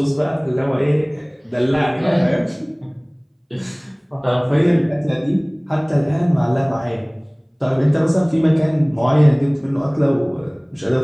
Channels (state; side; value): identical; both; correlation 1.00